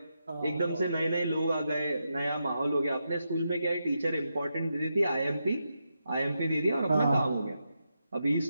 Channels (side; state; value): both; inverted; correlation -0.85